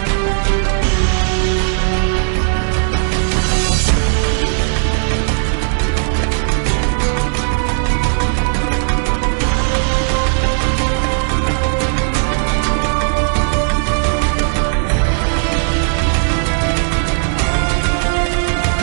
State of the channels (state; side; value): silent; left; 69 dB below the other